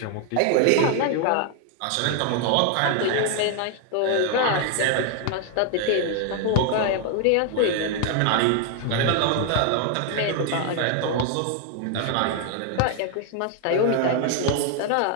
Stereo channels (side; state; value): both; different; correlation 0.00